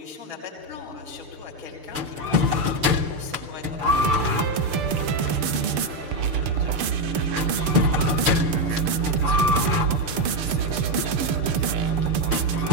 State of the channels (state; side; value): late; left; 6.8 ms